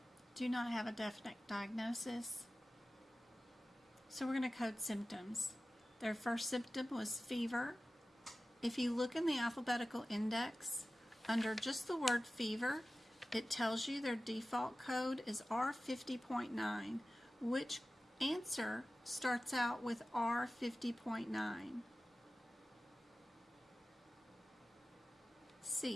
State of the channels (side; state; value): both; normal; correlation 0.96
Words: do not have a definite diagnosis. So we're going to code symptoms. Their first symptom was fever. If you look in the alphabetical index, under just the word fever, it tells you their default code is R50.9. Which answer starts out with R50.9?